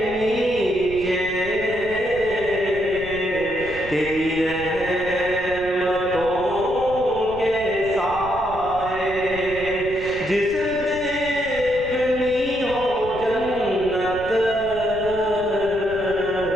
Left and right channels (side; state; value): right; noise; rumble, 14 dB below the sound